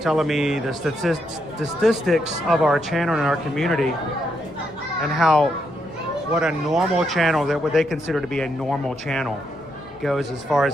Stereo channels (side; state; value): left; noise; rumble, 28 dB below the sound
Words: telling me the statistics of our channel and our community and how what a normal channel, that what they consider to be a normal channel, goes as far